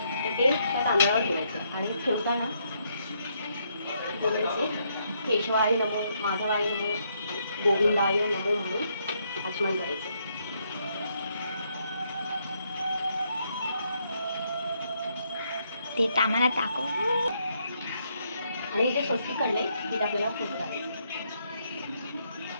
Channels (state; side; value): inverted; both; correlation -0.75